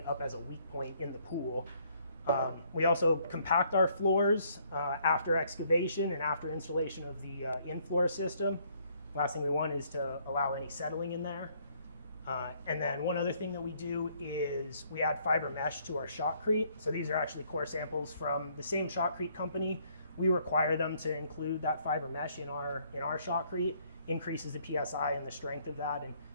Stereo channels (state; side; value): inverted; both; correlation -0.66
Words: up as a weak point in the pool. We also compact our floors after excavation and after installation of the in-floor system. Last thing we want is to allow any settling in there. And then one other thing that we do is we add fiber mesh to our shotcrete. So these are actually core samples from the same shotcrete company. We require them to include that fiber mesh in our shotcrete, increases the PSI and the strength of that, and